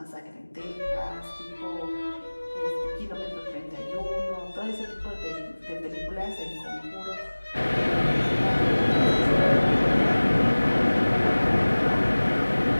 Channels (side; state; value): both; inverted; correlation -1.00